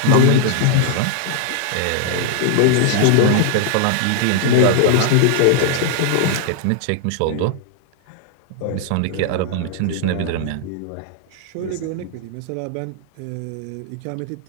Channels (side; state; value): both; different; correlation -0.01